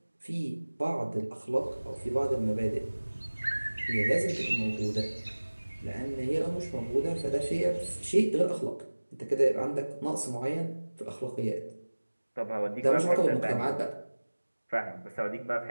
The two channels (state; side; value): inverted; both; correlation -1.00